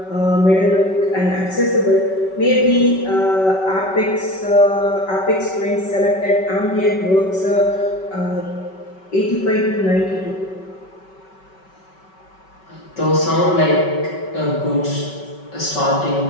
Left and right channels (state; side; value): late; right; 5.3 ms